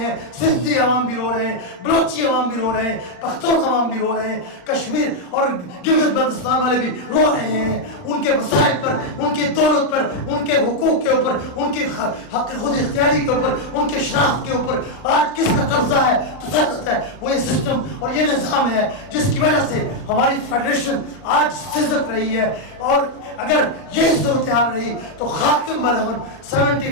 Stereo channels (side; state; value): right; late; 39 ms